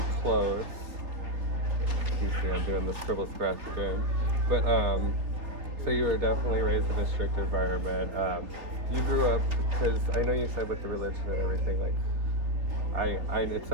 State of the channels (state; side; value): late; left; 4.1 ms